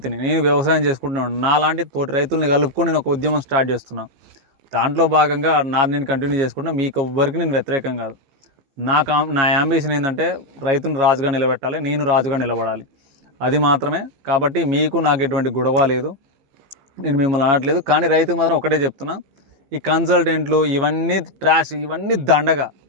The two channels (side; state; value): left; late; 15 ms